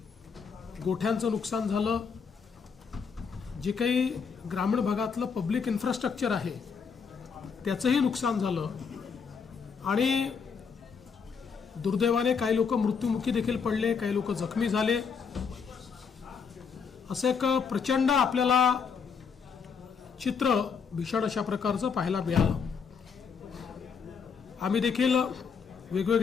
गोठ्यांचं नुकसान झालं. जे काही ग्रामीण भागातलं पब्लिक इन्फ्रास्ट्रक्चर आहे त्याचंही नुकसान झालं आणि दुर्दैवाने काही लोक मृत्युमुखी देखील पडले, काही लोक जखमी झाले. असं एक प्रचंड आपल्याला चित्र भीषण अशा प्रकारचं पाहायला मिळालं. आम्ही देखील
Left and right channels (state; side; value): quieter; right; 6.0 dB